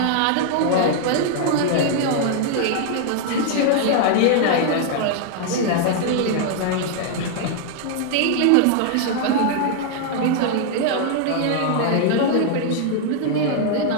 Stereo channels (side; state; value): both; different; correlation 0.00